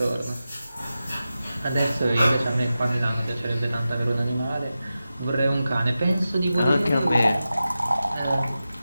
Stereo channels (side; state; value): both; inverted; correlation -0.93